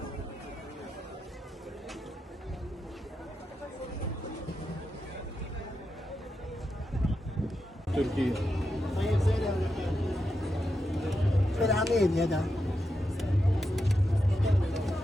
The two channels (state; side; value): normal; both; correlation 0.87